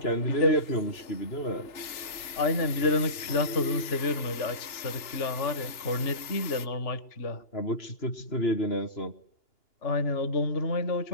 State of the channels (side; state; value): right; late; 2.8 ms